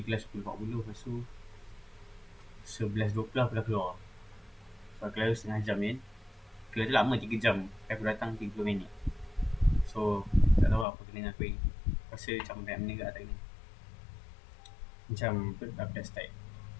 kelas 10.40. Lepas tu 11.20 aku dah keluar. So kelas tu setengah jam kan. Kelas tu lama 3 jam. Aku datang 30 minit. So tak tahu apa kena dengan aku ni. Rasa macam banyak benda kat tak kena. Macam aku dah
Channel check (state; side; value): drops out; right; at 10.9 s